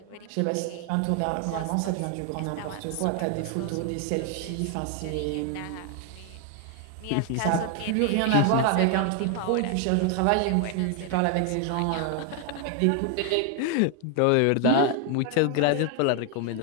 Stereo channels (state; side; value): different; both; correlation 0.00